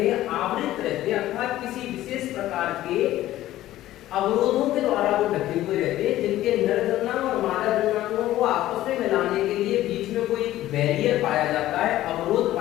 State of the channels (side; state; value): right; quieter; 14.6 dB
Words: हैं, आवृत रहते हैं, अर्थात किसी विशेष प्रकार के अवरोधों के द्वारा वो ढके हुए रहते हैं, जिनके नर जन्मांग और मादा जन्मांगों को आपस में मिलाने के लिए बीच में कोई बैरियर पाया जाता है, अवरोध